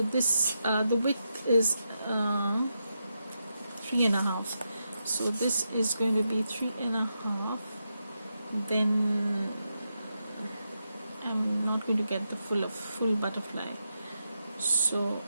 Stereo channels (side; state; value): both; inverted; correlation -0.85